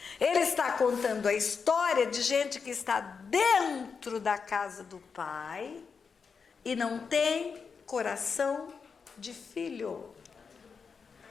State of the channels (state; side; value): quieter; right; 5.6 dB